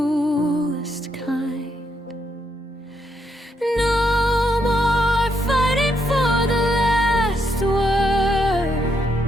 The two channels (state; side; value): normal; both; correlation 0.77